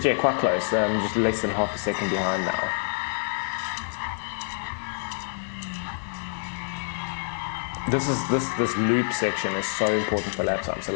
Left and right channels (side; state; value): right; silent; digital silence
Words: yeah, quite close. Just less than half a second behind now. This loop section is so important for lap time. So